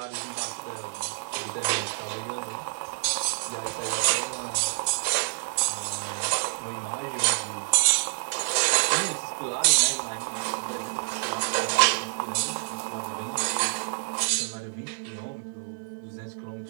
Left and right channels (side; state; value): left; silent; digital silence